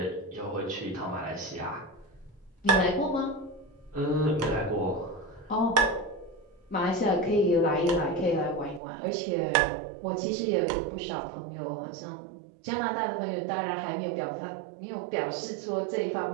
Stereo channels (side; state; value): left; drops out; at 8.8 s